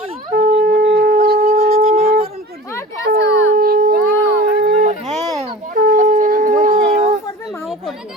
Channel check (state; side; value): normal; both; correlation 0.37